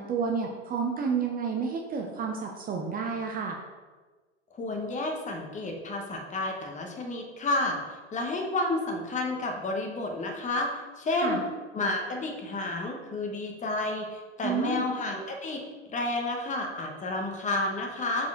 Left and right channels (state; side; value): normal; both; correlation 0.11